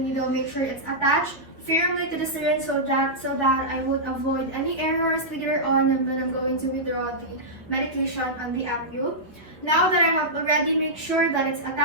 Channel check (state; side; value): normal; both; correlation -0.12